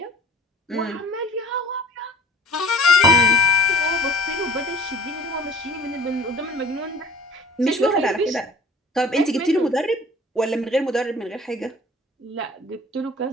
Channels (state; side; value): normal; both; correlation 0.47